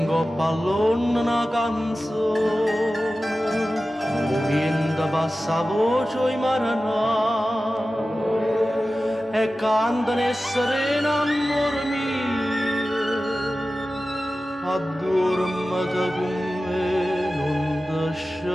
coppa all'onna una canzone, o vento passa a voce i maranai e cantano e serena amore mio. Addormata con me, non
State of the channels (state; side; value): normal; both; correlation 0.95